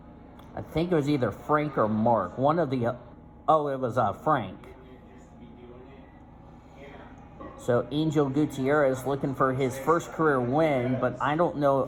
I think it was either Frank or Mark. One of the... oh, it was Frank. So Angel Gutierrez looking for his first career win, but I don't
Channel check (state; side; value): identical; both; correlation 1.00